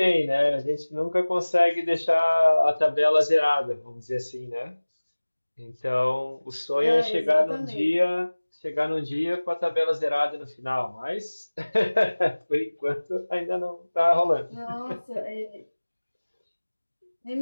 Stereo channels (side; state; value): both; inverted; correlation -1.00